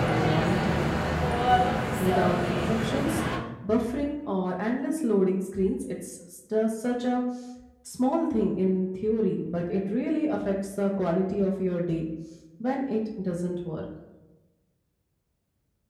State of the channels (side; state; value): both; identical; correlation 1.00